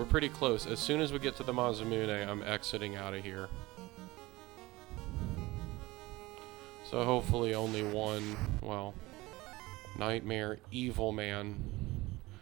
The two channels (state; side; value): quieter; left; 20.4 dB